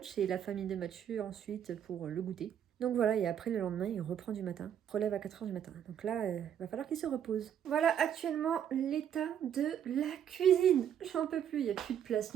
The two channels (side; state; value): left; quieter; 9.4 dB